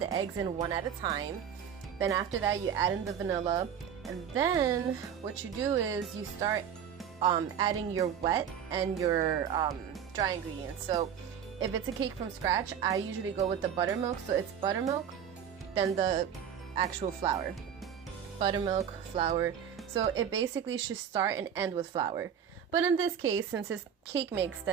eggs in 1 at a time. Then after that, you add in the vanilla, and then what you do is you start adding your wet and your dry ingredients. So if it's a cake from scratch, I usually go with the buttermilk. So it's buttermilk, then the actual flour. Buttermilk, flour. So it basically should start and end with flour. But in this case, since it's cake mix,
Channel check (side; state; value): left; quieter; 8.5 dB